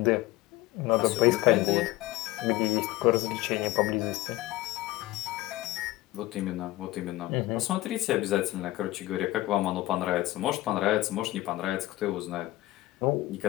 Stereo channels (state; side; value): quieter; right; 17.6 dB